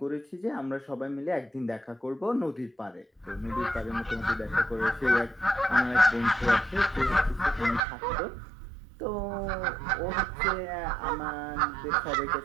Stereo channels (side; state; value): left; drops out; at 7.8 s